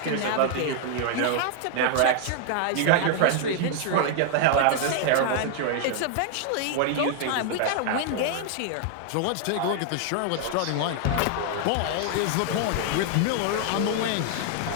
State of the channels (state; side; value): different; both; correlation 0.00